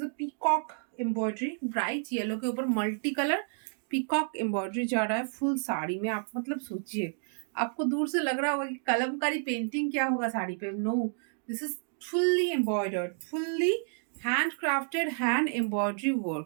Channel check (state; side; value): silent; left; digital silence